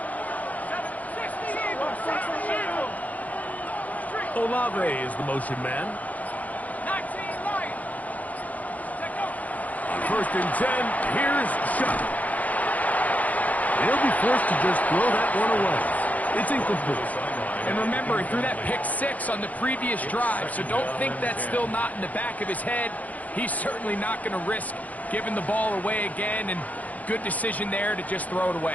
Olave is the motion man. On 1st and 10, here's Shuck. He'll be forced to just throw that one away. It's incomplete. And remember, he threw that pick 6 on the previous drive, so don't think that's still not in the back of his head. He's certainly not going to risk giving the ball away again, and good decision there to just throw it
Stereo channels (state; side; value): late; right; 0.075 ms